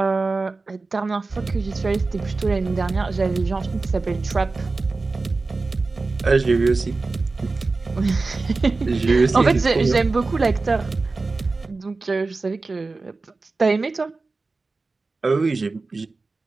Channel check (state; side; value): quieter; left; 3.7 dB